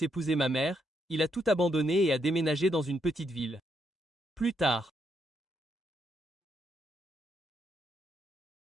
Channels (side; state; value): both; normal; correlation 0.77